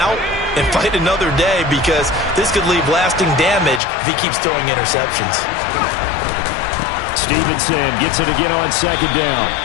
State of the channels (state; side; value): drops out; right; at 3.8 s